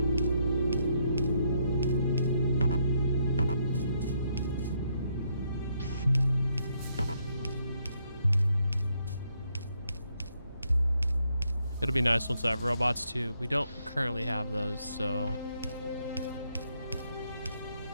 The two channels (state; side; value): inverted; both; correlation -0.75